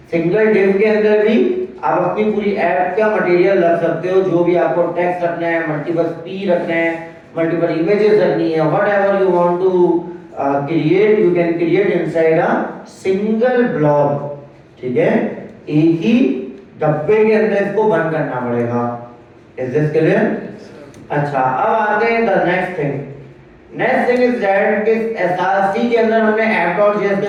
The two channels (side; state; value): both; identical; correlation 1.00